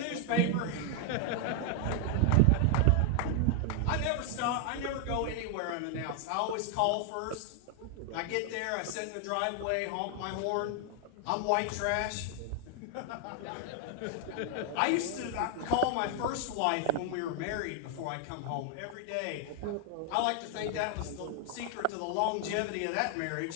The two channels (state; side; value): different; both; correlation 0.00